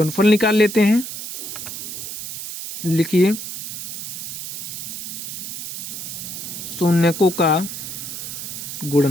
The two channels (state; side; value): noise; right; hiss, 7 dB below the sound